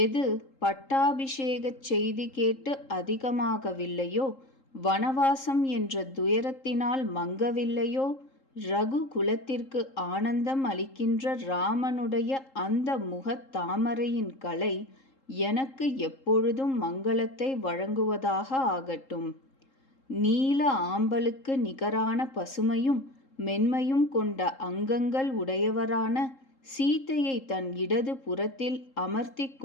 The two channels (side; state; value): right; late; 3.8 ms